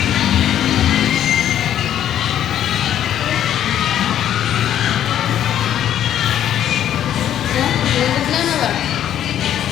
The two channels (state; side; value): quieter; right; 10.8 dB